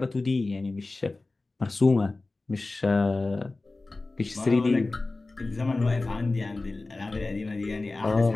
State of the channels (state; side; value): quieter; right; 3.3 dB